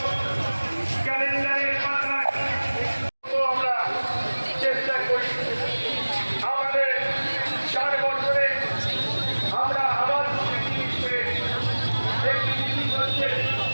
ক্যালেন্ডারের পাতায় আমরা চেষ্টা করি। আমাদের 4 বছরে আমরা আবার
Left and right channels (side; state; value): both; inverted; correlation -1.00